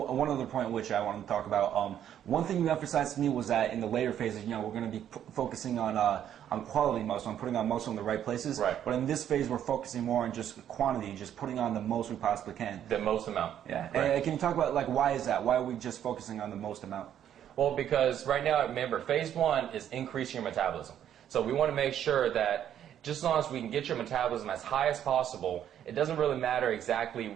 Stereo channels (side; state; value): left; quieter; 10.1 dB